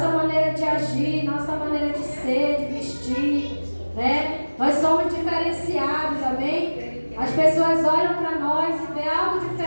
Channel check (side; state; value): both; inverted; correlation -1.00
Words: maneira de agir, nossa maneira de ser, de vestir, né? Nós somos diferenciados, amém? As pessoas olham para nós e vê algo